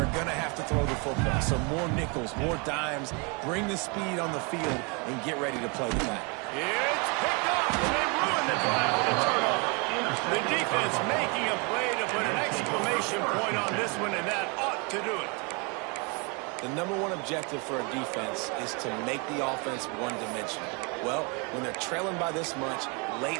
going to have to throw the football. So more nickels, more dimes. Bring the speed on the field and get ready to play the back. It's picked up, and they ruin the drive with a turnover. The defense making a play to put an exclamation point on this one, and that ought to do it. The number one objective for a defense is to make the offense one-dimensional. Well, when they're trailing by this much late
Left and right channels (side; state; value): left; quieter; 32.2 dB